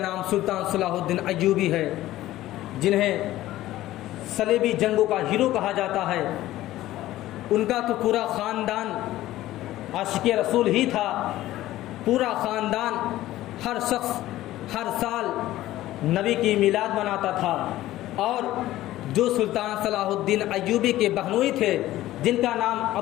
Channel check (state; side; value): quieter; right; 15.2 dB